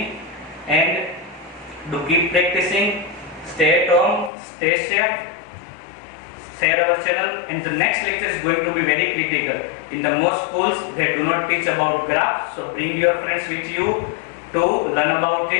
and do keep practicing. Stay at home, stay safe, share our channel, and the next lecture is going to be very critical. In the most schools they do not teach about graphs, so bring your friends with you to learn about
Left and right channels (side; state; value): right; drops out; at 4.3 s